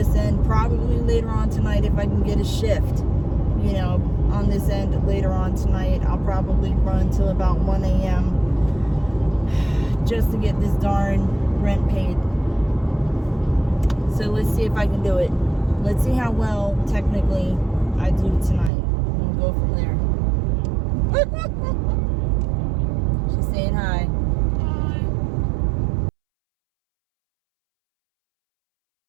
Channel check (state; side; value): drops out; left; at 18.7 s